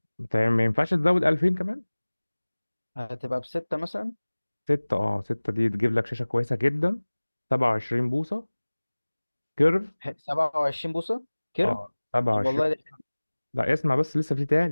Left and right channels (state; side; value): inverted; both; correlation -1.00